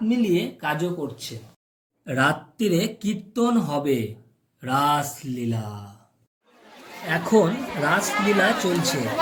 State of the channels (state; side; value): identical; both; correlation 1.00